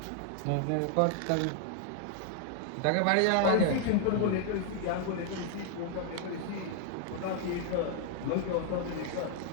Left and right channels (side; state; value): both; different; correlation 0.00